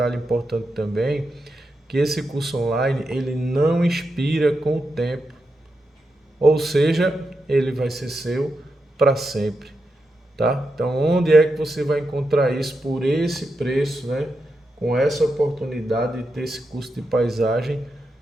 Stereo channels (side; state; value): both; normal; correlation 0.87